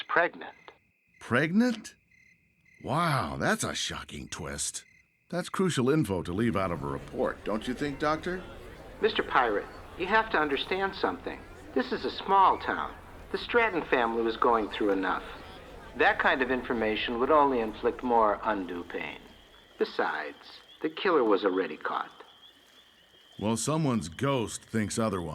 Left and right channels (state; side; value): identical; both; correlation 1.00